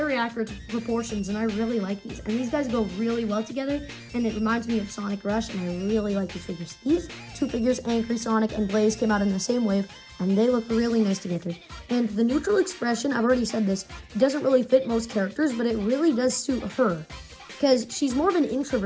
accurate proportions, and I really like these. And these guys go really well together, and it reminds me of Sonic Rush, and I really like these figures. These two figures, Angry Sonic and Blaze, came out in the same wave, and they look really nice together. And the neutral expression, I've already said this, doesn't really fit most characters, but it really does suit her. Because she's more of an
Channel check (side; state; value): both; identical; correlation 1.00